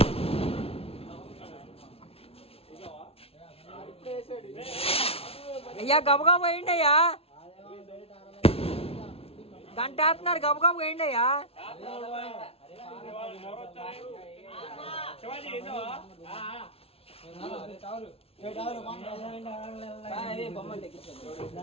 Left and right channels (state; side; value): late; right; 0.28 ms